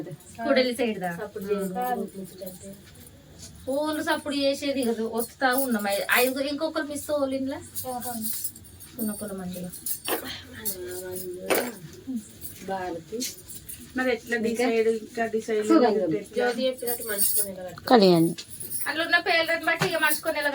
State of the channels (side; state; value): both; identical; correlation 1.00